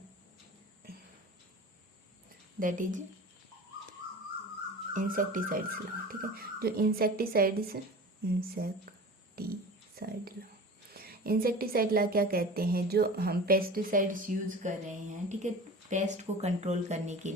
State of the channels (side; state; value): both; normal; correlation 0.37